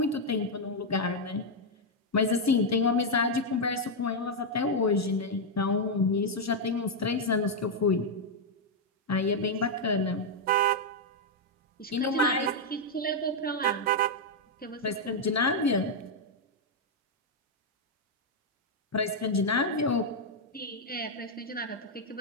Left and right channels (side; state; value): both; normal; correlation -0.01